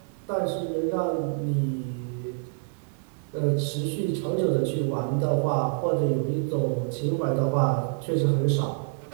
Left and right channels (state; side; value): silent; left; digital silence